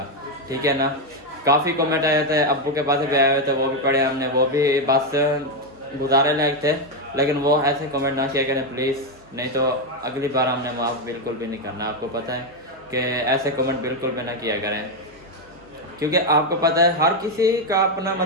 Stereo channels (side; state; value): right; noise; hum, 28 dB below the sound